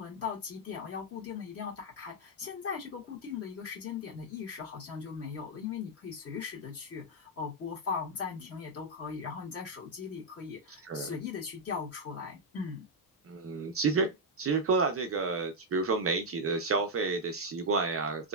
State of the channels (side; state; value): both; normal; correlation -0.01